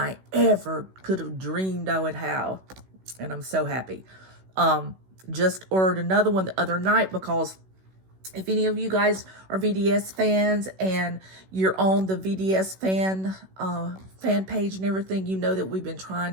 ever could have dreamed I would have. And I'm so happy. Just ordered another one the other night because if any of you guys are VDS fans and you're on the VDS fan page and everything, you know that we've been trying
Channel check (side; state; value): left; late; 16 ms